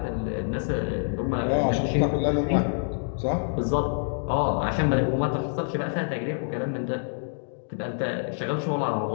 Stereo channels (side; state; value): right; silent; digital silence